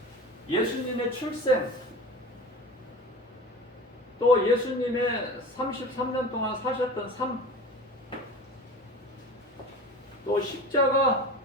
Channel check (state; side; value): normal; both; correlation 0.35